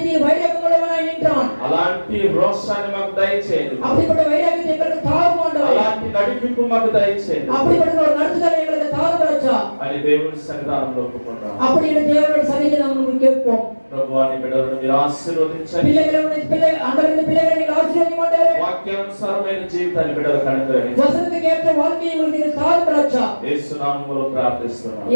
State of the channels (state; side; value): inverted; both; correlation -1.00